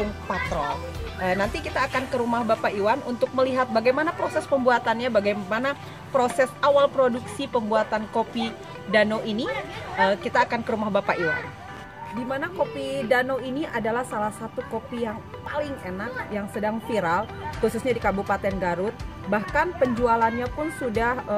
Patrol. Nanti kita akan ke rumah Bapak Iwan untuk melihat bagaimana proses pembuatannya, bagaimana proses awal produksi pembuatan kopi Dano ini. Kita akan ke rumah Bapak Iwan. Di mana kopi Dano ini adalah salah satu kopi yang paling enak, yang sedang viral, khususnya di Kabupaten Garut. Bahkan penjualannya pun sudah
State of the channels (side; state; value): both; identical; correlation 1.00